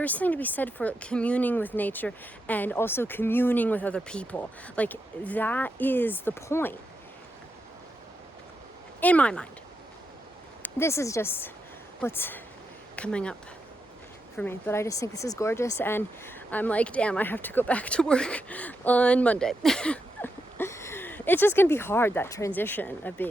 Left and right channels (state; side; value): normal; both; correlation 0.84